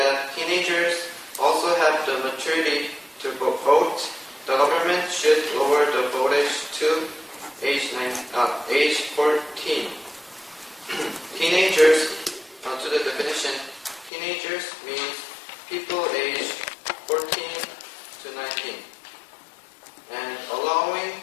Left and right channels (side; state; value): right; drops out; at 14.1 s